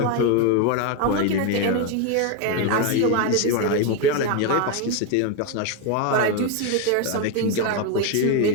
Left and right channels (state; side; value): different; both; correlation 0.01